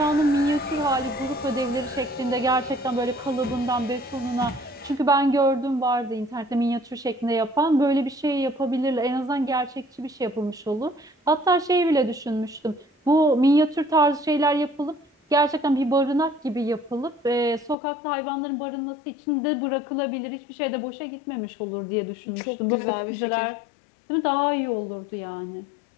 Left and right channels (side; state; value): right; drops out; at 17.8 s